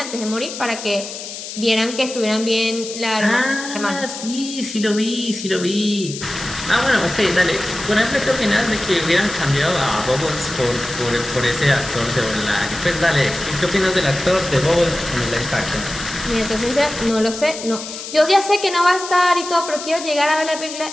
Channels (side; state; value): left; noise; hiss, 10 dB below the sound